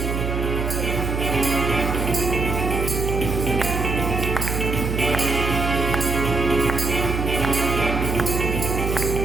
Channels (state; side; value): noise; right; hum, 1 dB below the sound